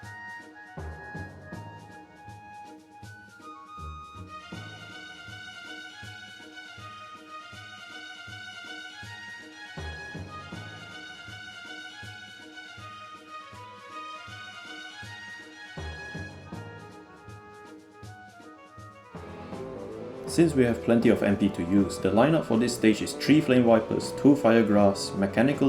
Since we have plenty of MP to use, the lineup for this stage is 3 Flame Vipers, 2 Fire Grass,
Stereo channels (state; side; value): identical; both; correlation 1.00